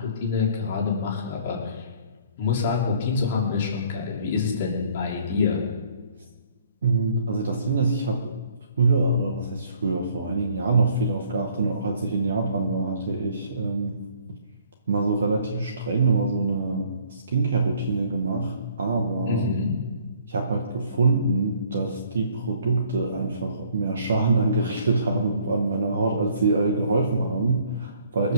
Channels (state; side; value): inverted; both; correlation -0.59